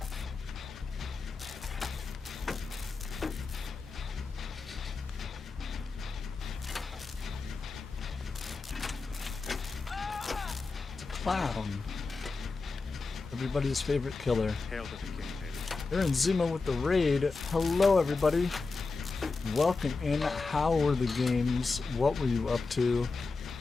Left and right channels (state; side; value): quieter; right; 4.1 dB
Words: It's a clown. Everybody's favorite killer. Hail to the king, baby. Aaron Zima with the raid. Hello, everybody. Welcome in. How were the games? What were you up to?